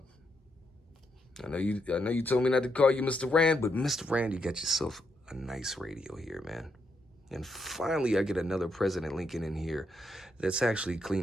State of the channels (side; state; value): both; normal; correlation 0.79